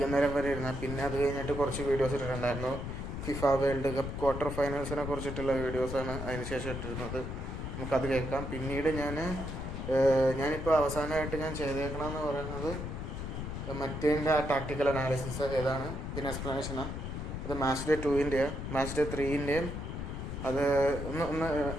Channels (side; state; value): left; noise; rumble, 5 dB below the sound